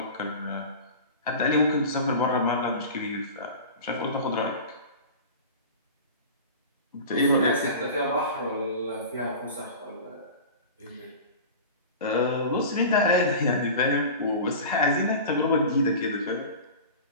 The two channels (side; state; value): both; inverted; correlation -0.34